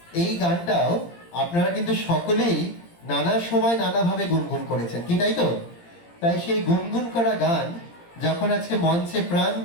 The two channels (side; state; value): right; late; 17 ms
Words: এই গানটাও আপনারা কিন্তু সকলেই নানা সময় নানাভাবে গুনগুন করেছেন, কি তাই তো? তাই সেই গুনগুন করা গান যখন আজকে মঞ্চে প্রাণ